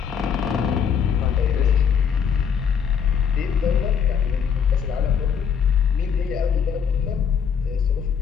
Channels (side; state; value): right; quieter; 7.2 dB